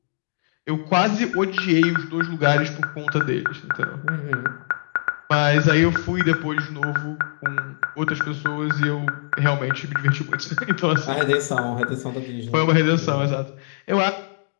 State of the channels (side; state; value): right; silent; digital silence